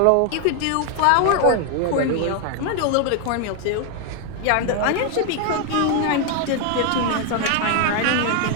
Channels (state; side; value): different; both; correlation 0.01